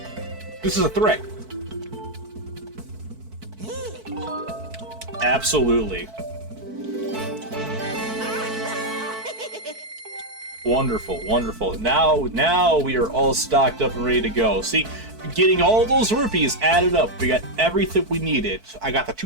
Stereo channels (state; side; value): late; left; 4.5 ms